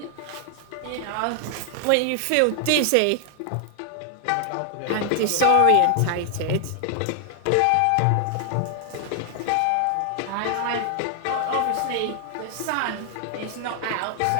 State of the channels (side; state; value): both; different; correlation 0.00